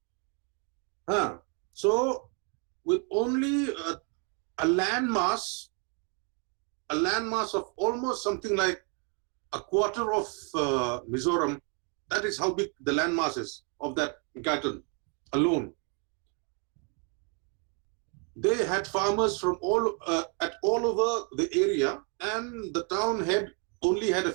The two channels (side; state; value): left; quieter; 37.5 dB